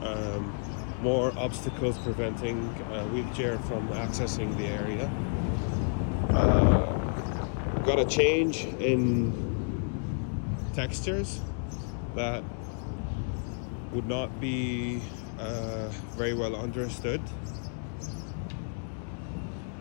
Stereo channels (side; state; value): right; silent; 57 dB below the other